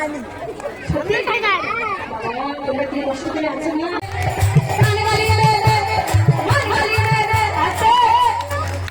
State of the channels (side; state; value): both; identical; correlation 1.00